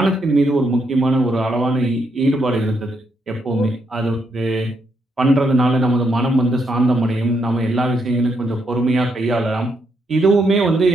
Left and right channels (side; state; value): both; normal; correlation 0.78